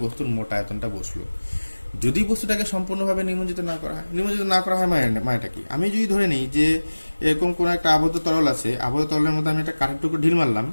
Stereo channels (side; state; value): both; inverted; correlation -1.00